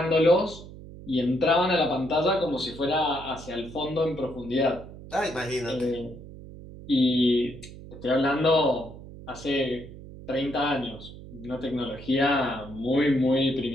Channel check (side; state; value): right; noise; hum, 15 dB below the sound